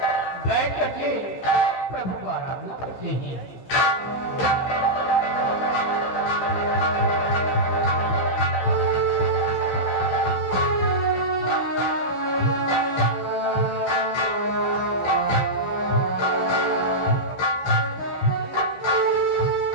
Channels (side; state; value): right; late; 15 ms